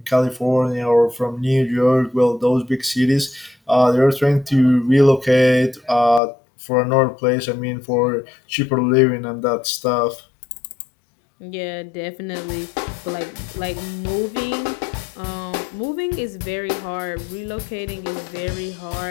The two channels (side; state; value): right; drops out; at 6.2 s